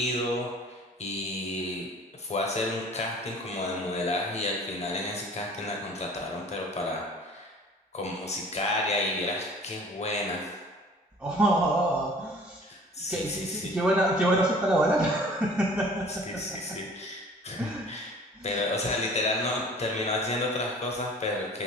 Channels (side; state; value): both; normal; correlation 0.48